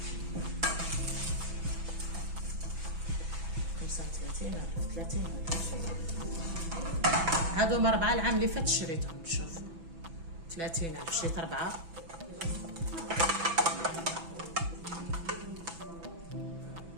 هادو 4 العام اللي فات شريتهم. شوفوا 30,000 شريت 4.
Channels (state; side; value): late; left; 6.0 ms